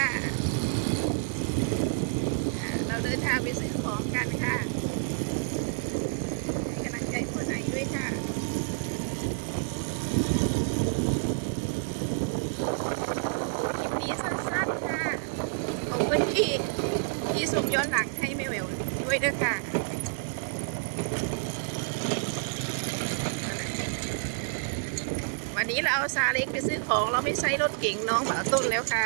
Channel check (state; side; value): silent; left; digital silence